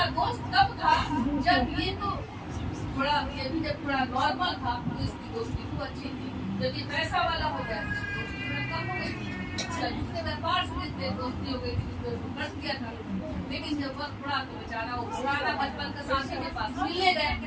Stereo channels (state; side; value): identical; both; correlation 1.00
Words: دوست کب تھا جب یہ تو جب تھوڑا نارمل تھا تو اس کی دوستی تو اچھی تھی. جب یہ پیسہ والا ہو گیا تو کم ہو گئی. اس बार से दोस्ती हो गई थी, बच गया था, लेकिन जब वक्त पड़ा तो बेचारा वो पुराना बचपन का साथी के पास मिलने